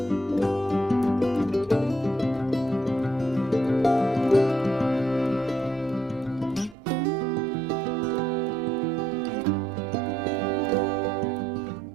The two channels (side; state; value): left; drops out; at 6.8 s